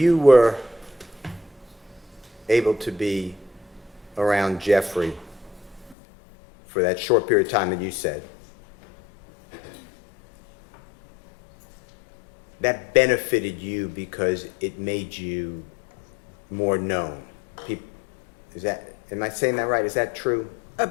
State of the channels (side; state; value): right; drops out; at 6.0 s